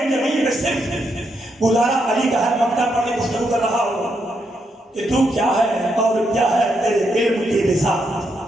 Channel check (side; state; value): both; normal; correlation 0.80